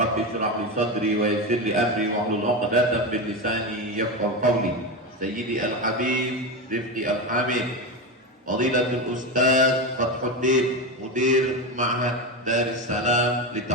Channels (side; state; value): both; normal; correlation 0.17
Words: shrah li sadri wa yassir li amri wa hlul 'uqdatam min lisani yafqahu qawli. Sayyidi al-habib Rifqi al-hamid Fadilatul Ustaz Fathuddin Mudir Ma'had Darussalam li